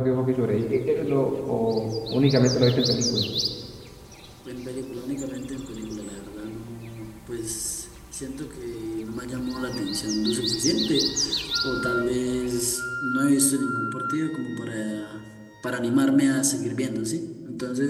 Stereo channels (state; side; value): identical; both; correlation 1.00